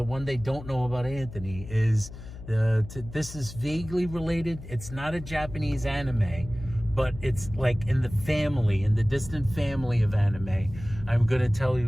one they don't know about Anthony is this is vaguely related. It's not a Japanese anime, but it's like in the distant family of anime. I'm going to tell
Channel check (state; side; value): noise; left; hum, 14 dB below the sound